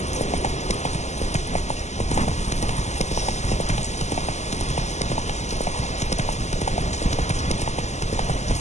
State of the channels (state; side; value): late; right; 0.33 ms